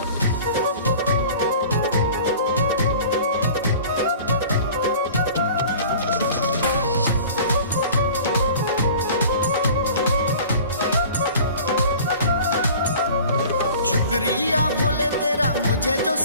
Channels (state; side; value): inverted; both; correlation -0.43